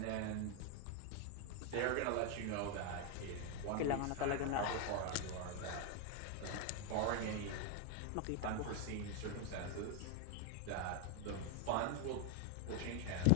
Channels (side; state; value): both; different; correlation 0.01